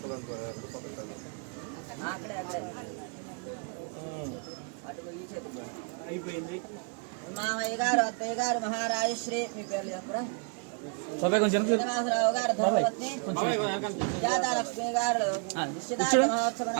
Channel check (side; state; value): left; quieter; 38.8 dB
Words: అయిపోయింది. మామయ్య గారు, అత్తయ్య గారు, మహారాజశ్రీ, మీ పేర్లు చెప్పరా? శ్రీనివాసరావు గారు ధర్మపత్ని, సుజాతాలక్ష్మి గారు నిశ్చితార్థ